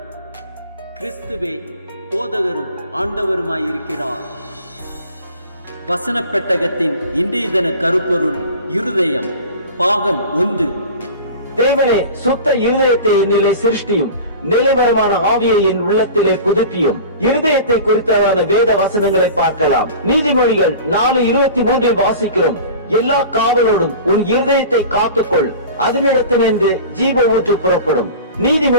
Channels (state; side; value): inverted; both; correlation -0.37